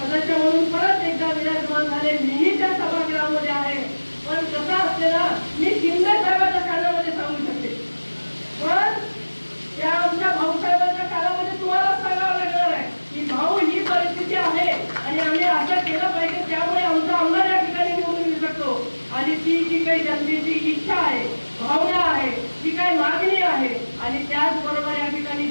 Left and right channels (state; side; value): inverted; both; correlation -1.00